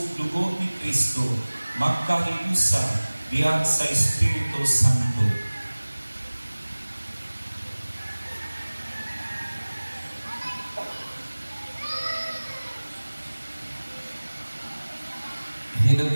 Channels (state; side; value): inverted; both; correlation -1.00